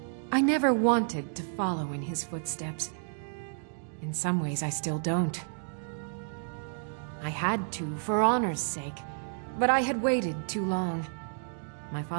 I never wanted to follow in his footsteps. In some ways, I still don't. I had to, for honor's sake, but I had waited too long. My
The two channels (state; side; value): silent; left; digital silence